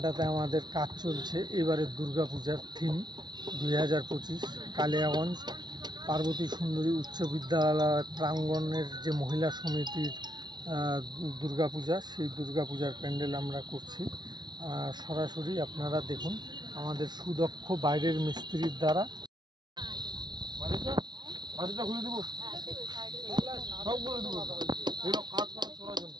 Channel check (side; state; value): left; late; 0.20 ms